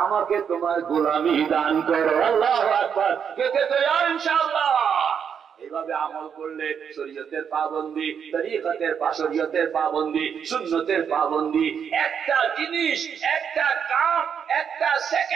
আমাকে তোমার গোলামি দান করো। আল্লাহু আকবার। কে কে তৈরি ইনশাআল্লাহ? এইভাবে আমল করলে শরীয়তের পাবন্দি, তরিকতের শরীয়তের পাবন্দি, সুন্নতের পাবন্দি, একটা জিনিস, একটা কাম, একটা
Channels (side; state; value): left; quieter; 7.5 dB